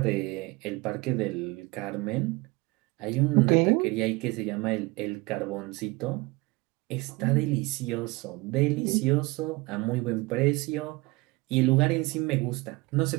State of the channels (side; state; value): left; quieter; 23.9 dB